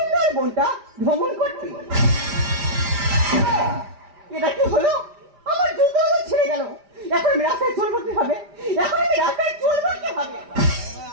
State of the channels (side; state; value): left; late; 5.0 ms